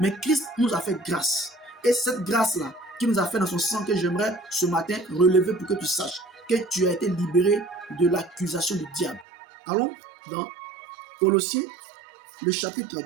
Christ nous a fait grâce. Et cette grâce-là, qui nous a fait dans son sang, que j'aimerais ce matin relever pour que tu saches que tu as été libéré de l'accusation du diable. Allons dans Colossiens, le chapitre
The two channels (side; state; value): left; drops out; at 9.2 s